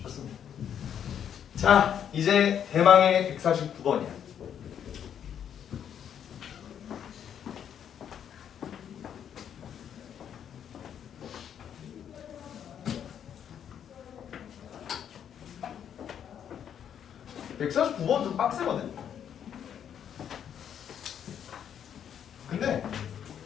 좋습니다. 자, 이제 대망의 149번이야. (149번) 좀 빡세거든? 근데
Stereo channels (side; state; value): right; quieter; 8.9 dB